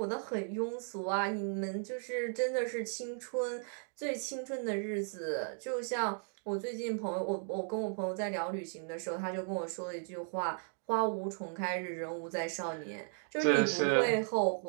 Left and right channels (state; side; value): silent; left; 54 dB below the other